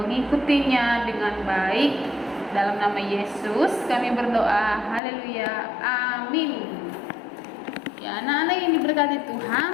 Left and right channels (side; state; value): right; drops out; at 5.0 s